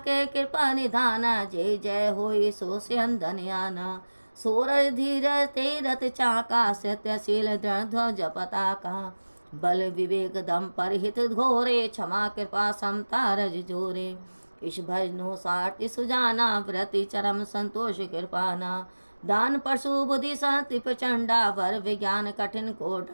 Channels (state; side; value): inverted; both; correlation -1.00